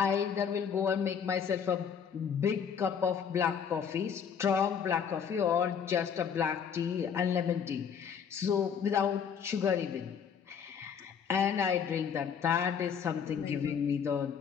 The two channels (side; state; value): right; quieter; 7.3 dB